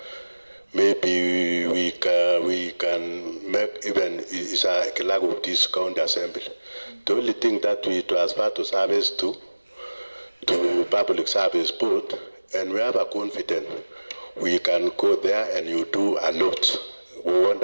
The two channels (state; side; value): inverted; both; correlation -1.00